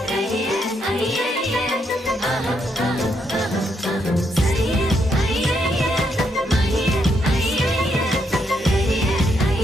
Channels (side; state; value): both; normal; correlation 0.77